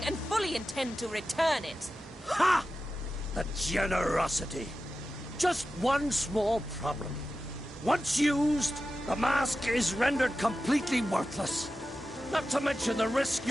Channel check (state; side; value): normal; both; correlation 0.93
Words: and fully intend to return it. Ha! The generosity. Just one small problem. Once used, the mask is rendered completely worthless. Not to mention the risk